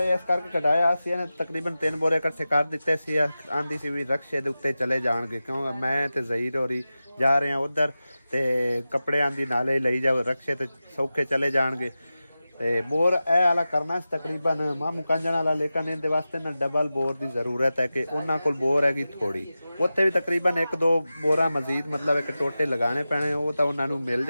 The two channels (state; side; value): inverted; both; correlation -0.94